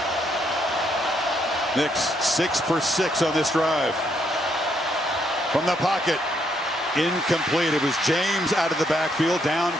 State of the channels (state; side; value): normal; both; correlation 0.74